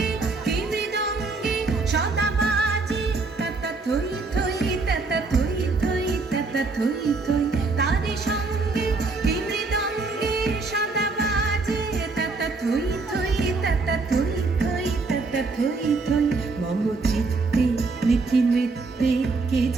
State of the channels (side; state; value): left; quieter; 3.8 dB